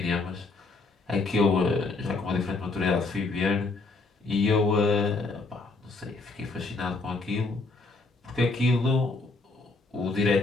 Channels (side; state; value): right; quieter; 3.6 dB